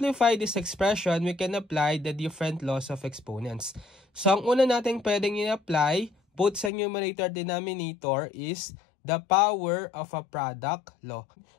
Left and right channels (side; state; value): right; drops out; at 6.7 s